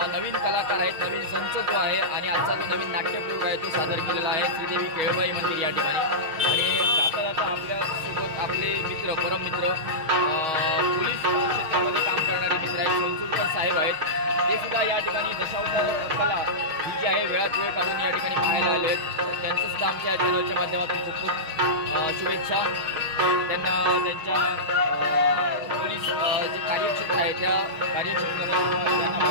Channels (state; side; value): late; left; 6.3 ms